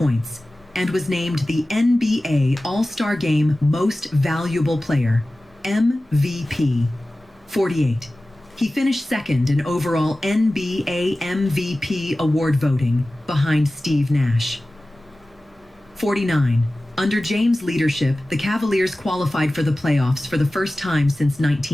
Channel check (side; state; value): both; normal; correlation 0.96